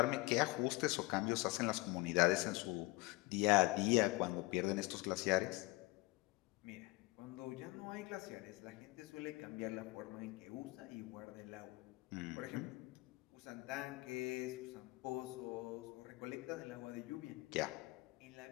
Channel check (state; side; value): quieter; right; 22.2 dB